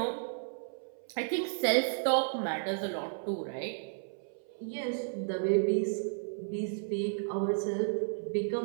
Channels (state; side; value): silent; left; 56 dB below the other